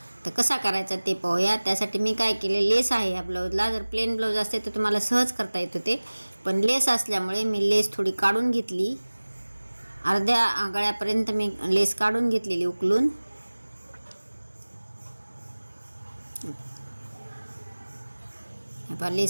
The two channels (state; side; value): inverted; both; correlation -1.00